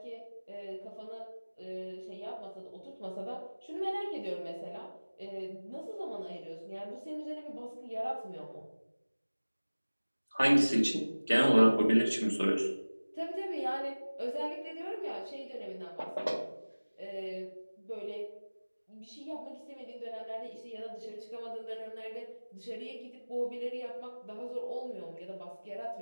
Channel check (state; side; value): inverted; both; correlation -1.00